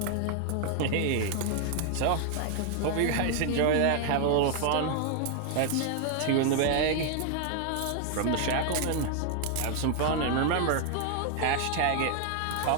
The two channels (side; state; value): both; different; correlation 0.00